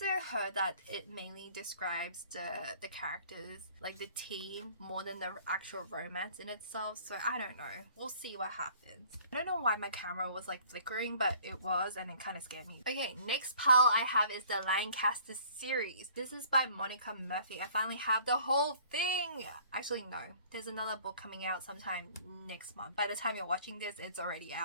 heard that it mainly describes the characters, like the team, more than the actual romance in itself, so I don't know. We'll see what happens. I don't know why my camera was like flickering, but it was, and it kind of scared me. Okay, next pile I have is the Lancaster series. This is by Monica Murphy. I finally have the whole thing. Actually, no. There's another book coming out sometime next month. By the time you're watching this, it's already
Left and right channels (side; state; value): both; inverted; correlation -0.54